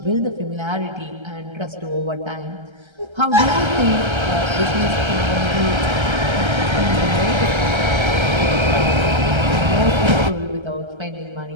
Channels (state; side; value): late; left; 1.3 ms